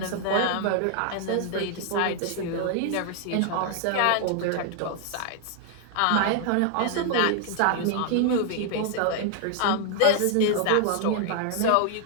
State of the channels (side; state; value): both; different; correlation 0.00